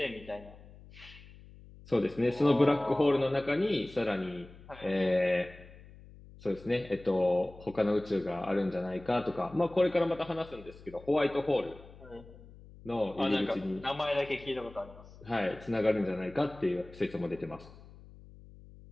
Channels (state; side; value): noise; left; hum, 20 dB below the sound